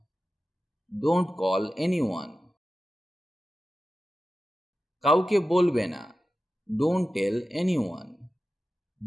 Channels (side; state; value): both; normal; correlation 0.93